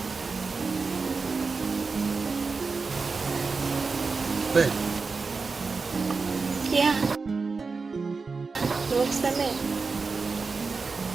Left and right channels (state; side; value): quieter; left; 4.4 dB